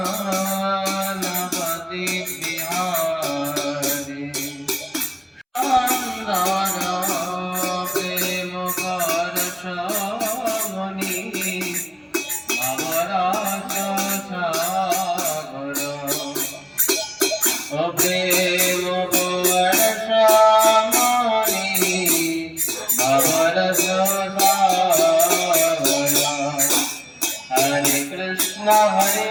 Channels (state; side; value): identical; both; correlation 1.00